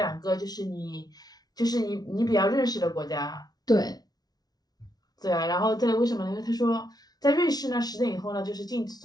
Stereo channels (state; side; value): late; right; 0.19 ms